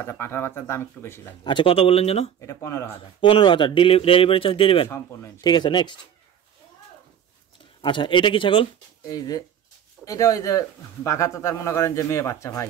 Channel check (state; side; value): quieter; left; 9.1 dB